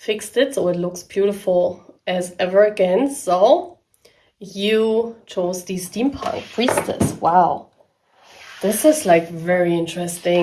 it so it looks beautiful as ever again. So, you chose the Steampunk Priestess. Wow. This is like very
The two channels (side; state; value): both; identical; correlation 1.00